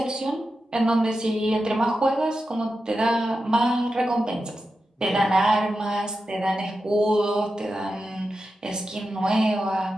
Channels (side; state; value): both; normal; correlation 0.90